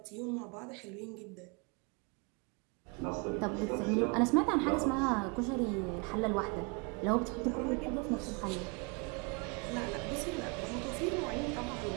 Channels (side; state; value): left; quieter; 32.5 dB